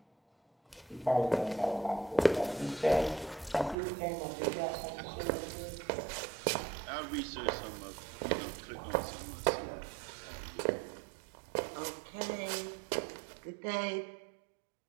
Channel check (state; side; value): drops out; left; at 3.8 s